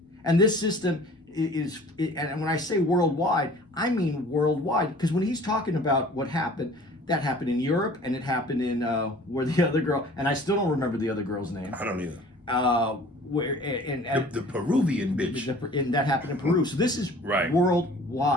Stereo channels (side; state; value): both; normal; correlation 0.48